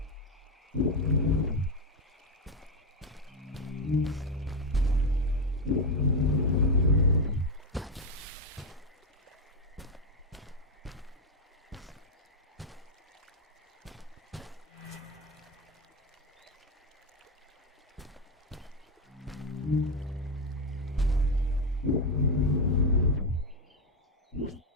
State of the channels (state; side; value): normal; both; correlation 0.08